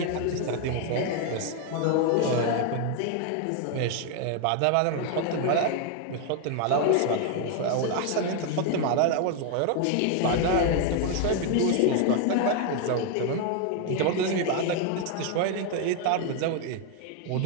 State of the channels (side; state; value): both; different; correlation 0.01